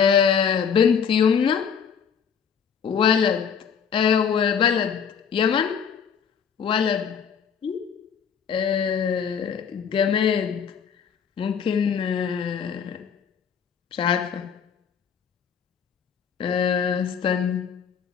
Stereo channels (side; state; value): right; quieter; 7.2 dB